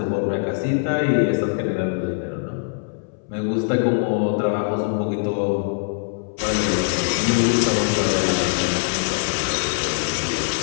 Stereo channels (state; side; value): silent; right; 64 dB below the other